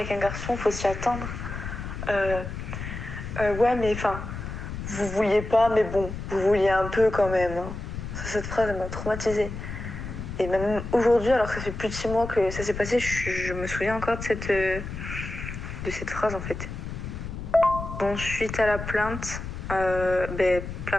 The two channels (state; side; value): noise; left; rumble, 7 dB below the sound